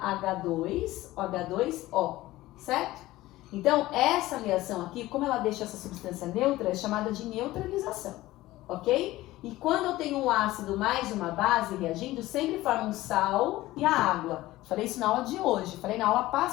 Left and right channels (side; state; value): right; quieter; 17.1 dB